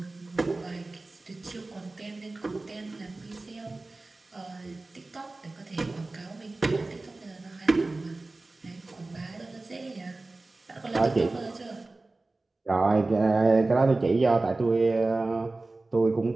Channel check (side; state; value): left; quieter; 3.2 dB